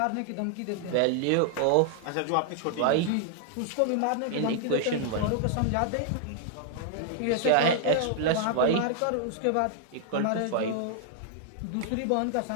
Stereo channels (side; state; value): both; different; correlation -0.01